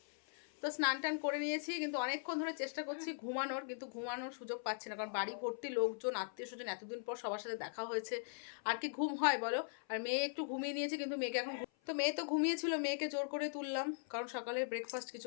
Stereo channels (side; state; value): right; silent; 51 dB below the other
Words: তো স্নান টান করে নিয়েছি, কিন্তু অনেকক্ষণ ধরে চেষ্টা করছি ঘুমানোর, কিন্তু ঘুমানোর সুযোগ পাচ্ছি না, কারণ বাড়ি ভর্তি লোকজন, আত্মীয় স্বজন, এতদিন পর সবার সাথে দেখা হয়েছে, আর কি ঘুম হয় বলো। আর মেয়ে একটু ঘুমিয়ে নিয়েছে, কিন্তু মেয়েকে এখন, তো মেয়ে তো ঘুমিয়েছিল, মেয়েকে জোর করে তুললাম, কারণ সকালে ব্রেকফাস্ট